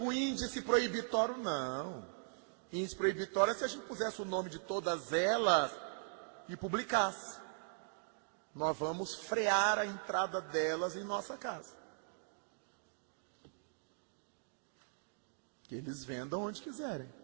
índice proibitório? Não. Índice proibitório é se a gente pusesse o nome de todas elas e publicasse. Nós vamos frear a entrada delas em nossa casa. Que eles vendam onde quiserem.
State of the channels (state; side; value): silent; left; digital silence